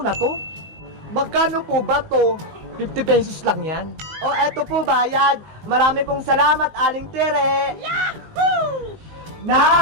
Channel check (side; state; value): left; late; 19 ms